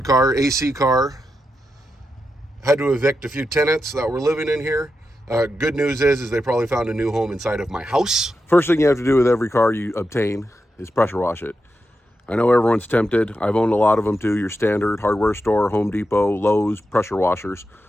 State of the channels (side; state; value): both; normal; correlation 0.88